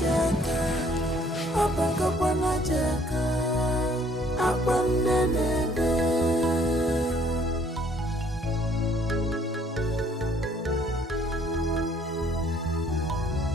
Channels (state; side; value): normal; both; correlation 0.61